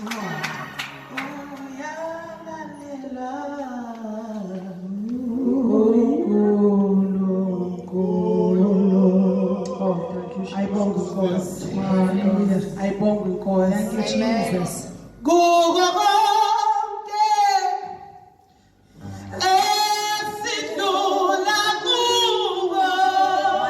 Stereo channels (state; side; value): identical; both; correlation 1.00